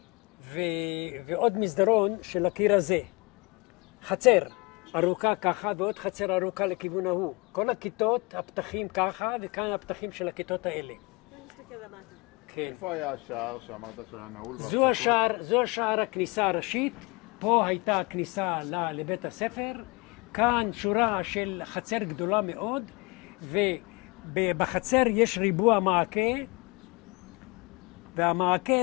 ועוד מסדרון של הקיר הזה. חצר ארוכה ככה, ועוד חצר ארוכה לכיוון ההוא. כל הכיתות, הפתחים ככה, וכאן הפתחים של הכיתות האלה. נסתכל למטה. כן. איפה היה השער שאמרת שהיה נעול? זו השער הכניסה הראשית. פה הייתה הכניסה לבית הספר. כאן שורה של חצר גדולה מאוד, ובחצר יש ריבוע מעקה,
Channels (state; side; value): quieter; right; 27.0 dB